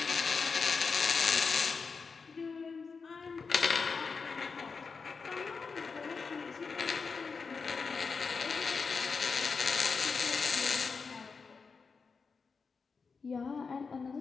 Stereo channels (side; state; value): right; quieter; 5.0 dB